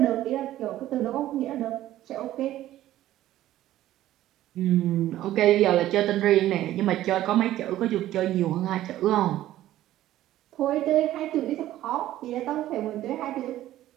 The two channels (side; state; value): left; quieter; 13.9 dB